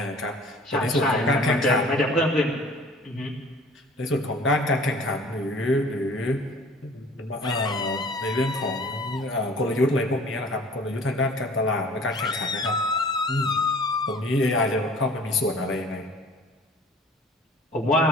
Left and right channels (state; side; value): normal; both; correlation 0.48